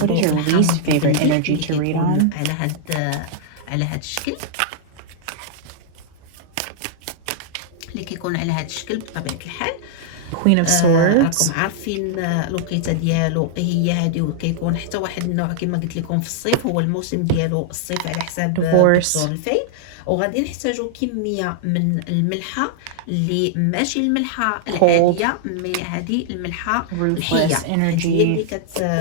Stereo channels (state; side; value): different; both; correlation -0.01